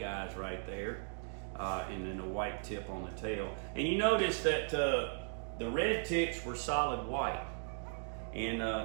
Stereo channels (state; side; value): silent; left; 53 dB below the other